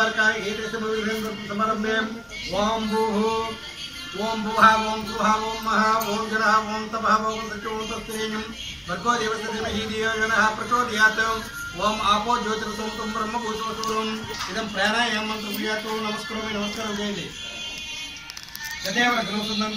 ఏదైతే సమారంభే ఓం భూః ఓం భువః ఓం సువః ఓం మహా ఓం జనః ఓం తపః ఓం సత్యం ఓం తస్త్రేయం భర్గో దేవస్య ధీమహి ధియో యో నః ప్రచోదయాత్ ఓం ఆపో జ్యోతిర్సోమం బ్రహ్మభూతోం ఇదం ప్రాణాయామ మంత్రం ప్రియాతో నమస్కారం చేయండి యదేవ గ్రహసుందం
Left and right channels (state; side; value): identical; both; correlation 1.00